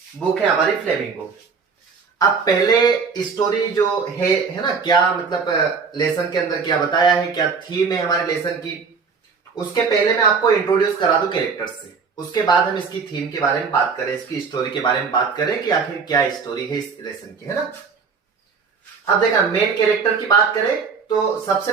बुक है हमारी फ्लेमिंगो। अब पहले स्टोरी जो है ना, क्या मतलब लेसन के अंदर क्या बताया है, क्या थीम है हमारे लेसन की, उसके पहले मैं आपको इंट्रोड्यूस करा दूं कैरेक्टर्स से। उसके बाद हम इसकी थीम के बारे में बात करें, इसकी स्टोरी के बारे में बात करें कि आखिर क्या स्टोरी है इस लेसन की, है ना। अब देखा, मेन कैरेक्टर की बात करें तो सबसे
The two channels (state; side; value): quieter; left; 5.4 dB